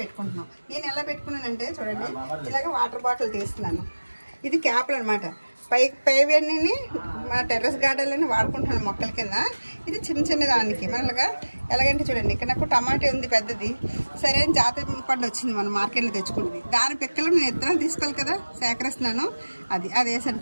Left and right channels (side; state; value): both; inverted; correlation -1.00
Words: పెట్టుకుంటున్నాం. నేను ఎలా పెట్టుకున్నానంటే చూడండి, ఇలాగ వాటర్ బాటిల్ తీస్తున్నాను. ఇది క్యాప్లు అనమాట. పైవన్నీ మన టెర్రస్ గార్డెన్లోనే వాడుకుంటున్నాను మొక్కల కింద. ఇది చిన్న చిన్న దానికి మనగా ఎలాగంటే చూడండి, ఇక్కడ నాకు టమాటా ఉంది పెద్దది, సరైన జాతి పండు వచ్చింది మనం మార్కెట్లో తెచ్చుకున్నది. దాని పిక్కలు నేను ఇత్తనాలు తీసుకోవాలి కదా, సేకరిస్తున్నాను. అది